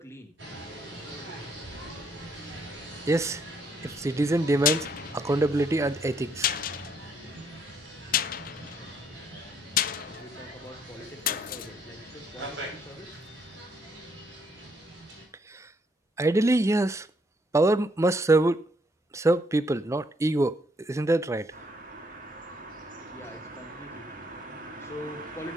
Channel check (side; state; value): both; normal; correlation 0.69